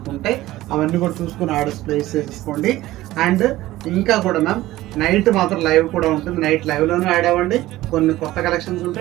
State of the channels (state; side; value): quieter; left; 16.4 dB